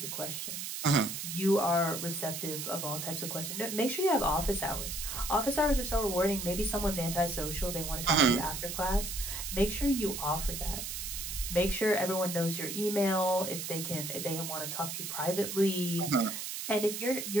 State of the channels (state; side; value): noise; right; hiss, 5 dB below the sound